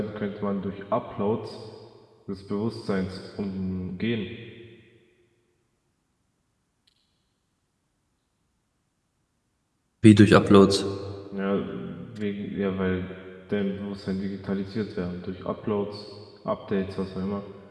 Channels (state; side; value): identical; both; correlation 1.00